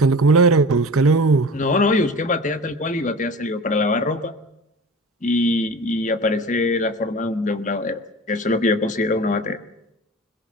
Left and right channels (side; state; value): both; normal; correlation 0.36